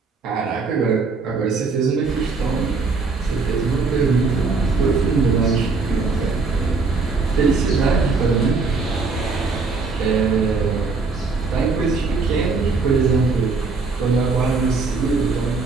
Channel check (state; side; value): quieter; left; 4.2 dB